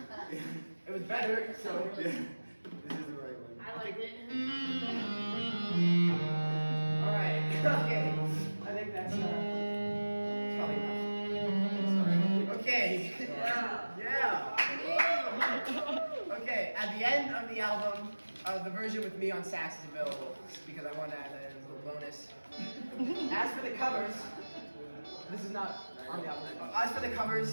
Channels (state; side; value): inverted; both; correlation -1.00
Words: It was better, so. Yeah. This is the right one. I liked it. Alright, okay. I think that's probably enough. Okay. Yeah. Okay, at the end of the album, the version with me on sax is available because I want to add that as a little bonus. As for the covers, this is not on the album. As for the